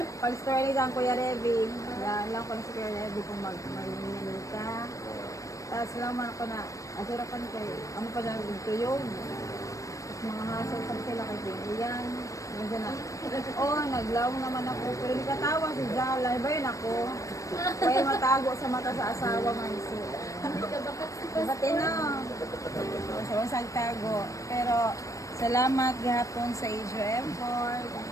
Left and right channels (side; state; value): right; late; 0.16 ms